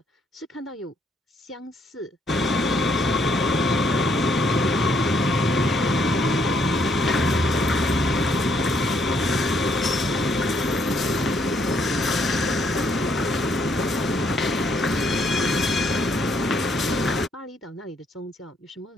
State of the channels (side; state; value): both; normal; correlation 0.70